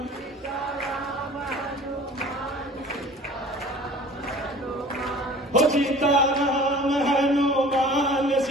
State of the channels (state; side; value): normal; both; correlation 0.45